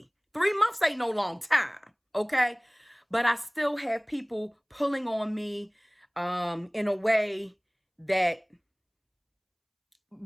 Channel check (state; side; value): identical; both; correlation 1.00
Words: 3 months ain't no long time, okay? But I still have people pulling on me in a way that